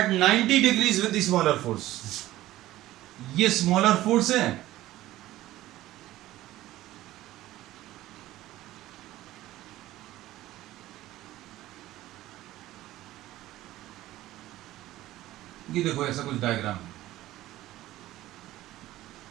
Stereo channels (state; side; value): quieter; left; 15.6 dB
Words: 90 degrees with the smaller force, ये स्मॉलर फोर्स है, ये देखो ऐसा कुछ डायग्राम,